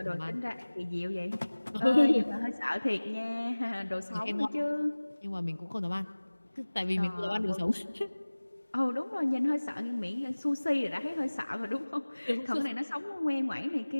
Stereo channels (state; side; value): inverted; both; correlation -1.00